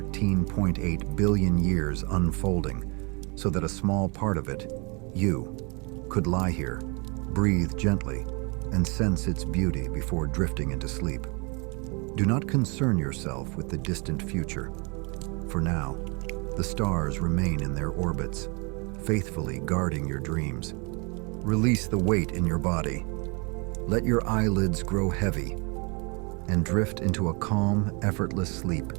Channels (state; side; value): quieter; left; 31.8 dB